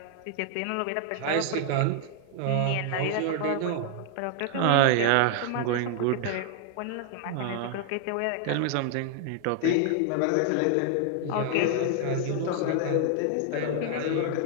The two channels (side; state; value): both; different; correlation 0.00